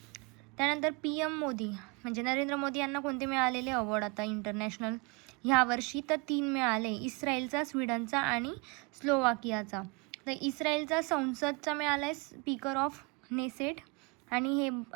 त्यानंतर PM मोदी म्हणजे नरेंद्र मोदी यांना कोणते मिळालेले अवॉर्ड आता इंटरनॅशनल ह्या वर्षी तर 3 मिळाले. इस्रायलचा, स्वीडनचा आणि स्लोवाकियाचा. तर इस्रायलचा संसदचा मिळाला आहे स्पीकर ऑफ नेसेट आणि हे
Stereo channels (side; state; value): left; quieter; 29.2 dB